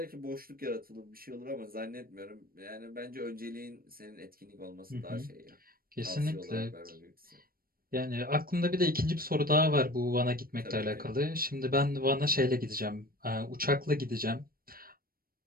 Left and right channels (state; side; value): late; left; 0.43 ms